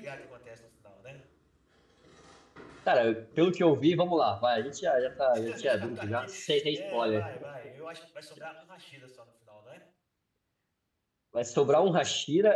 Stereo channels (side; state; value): both; identical; correlation 1.00